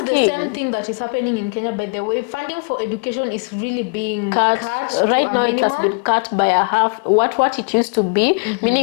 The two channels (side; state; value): right; quieter; 37.2 dB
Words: the same thing that is happening in Kenya. By the way, funding for education is really being cut right to now. a minimum. It has been cut by a half what it used to be.